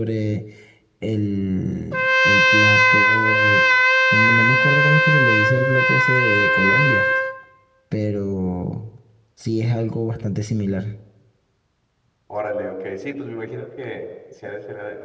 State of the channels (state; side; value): identical; both; correlation 1.00